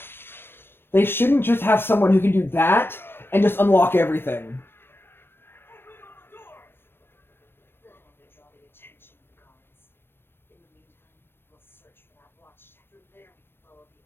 they shouldn't just have someone who can do that and just unlock everything.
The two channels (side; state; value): right; late; 0.10 ms